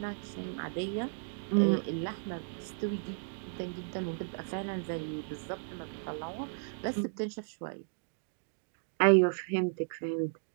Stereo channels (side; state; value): left; silent; digital silence